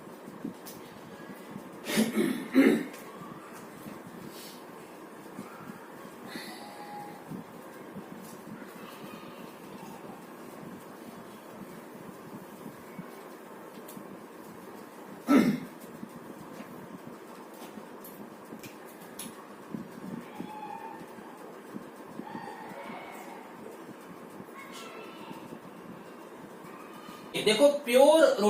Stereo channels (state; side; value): identical; both; correlation 1.00